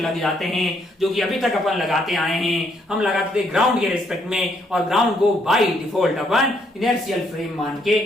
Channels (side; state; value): both; normal; correlation 0.72